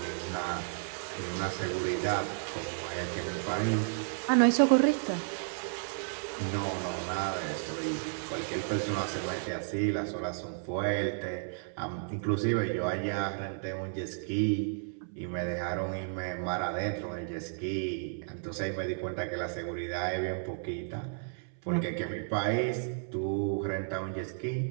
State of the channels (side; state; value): left; silent; 56 dB below the other